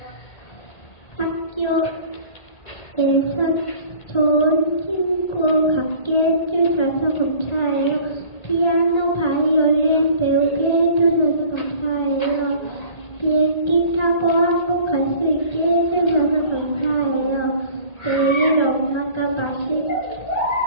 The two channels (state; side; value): late; right; 1.8 ms